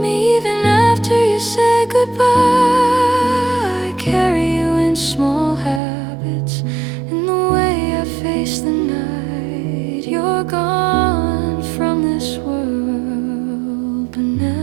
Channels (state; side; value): drops out; left; at 5.8 s